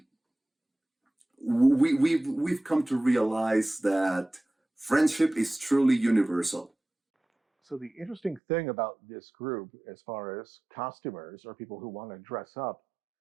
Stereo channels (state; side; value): drops out; left; at 8.4 s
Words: we've come to realize that friendship is truly universal. So the interesting thing about this group, as far as costumers or people who want to dress up,